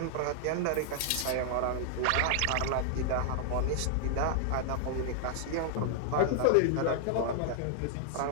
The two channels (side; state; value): both; different; correlation 0.00